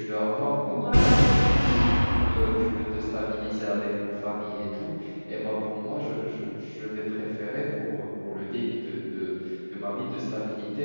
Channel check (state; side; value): inverted; both; correlation -1.00